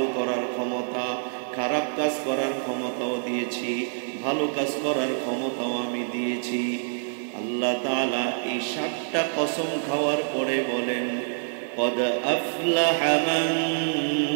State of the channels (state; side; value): silent; left; 61 dB below the other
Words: করার ক্ষমতা। খারাপ কাজ করার ক্ষমতাও দিয়েছি, ভালো কাজ করার ক্ষমতাও আমি দিয়েছি। আল্লাহ তাআলা এই 7টা কসম খাওয়ার পরে বলেন, কদ আফলাহা মান